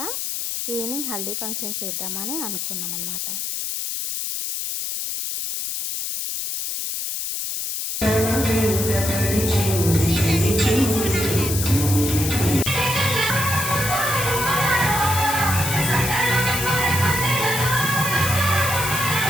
ఈవినింగ్ హల్దీ ఫంక్షన్ చేద్దామని అనుకున్నాం అన్నమాట.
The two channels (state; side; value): noise; left; hiss, 3 dB below the sound